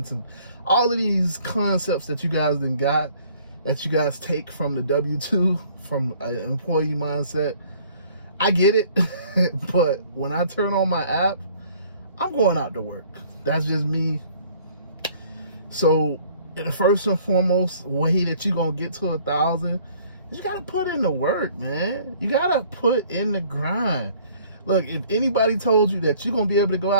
and all of these concepts that you guys take from the W-2, from an employee mindset. I get it, but when I turn on my app, I'm going out to work. That's just me. So the first and foremost way that you're going to get to 1,000 is you got to put in the work, man. You got to put in the grind. Look, if anybody told you that you're going to be able to go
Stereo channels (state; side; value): inverted; both; correlation -0.56